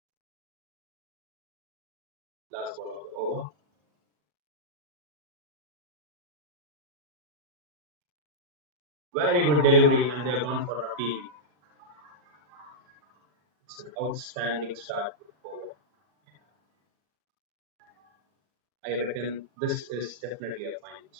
Last ball of the over. Very good delivery, and they're gone for a PV. It's an outstanding start to the over. I reckon this is definitely a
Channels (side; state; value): left; late; 40 ms